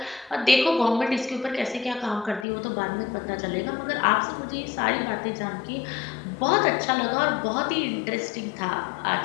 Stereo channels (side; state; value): right; drops out; at 2.5 s